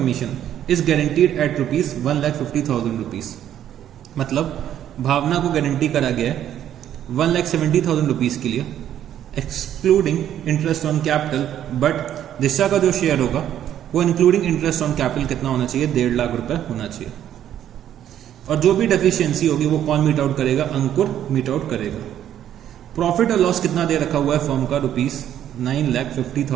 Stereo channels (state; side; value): quieter; left; 10.8 dB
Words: is guaranteed at rupees 1,50,000 rupees. मतलब भावना को गारंटी करा गया है 1,70,000 रुपीज के लिए excluding interest on capital, but Disha का जो शेयर होगा वो इंक्लूडिंग इंटरेस्ट ऑन कैपिटल कितना होना चाहिए? 1.5 लाख रुपए होना चाहिए। और जो भी डेफिशिएंसी होगी वो कौन मीट आउट करेगा? अंकुर मीट आउट करेगा। प्रॉफिट और लॉस कितना दे रखा हुआ है फर्म का? रुपीज